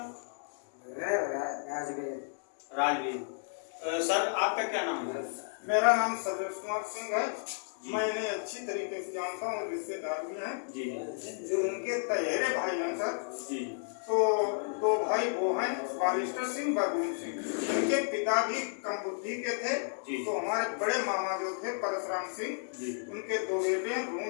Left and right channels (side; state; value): right; silent; digital silence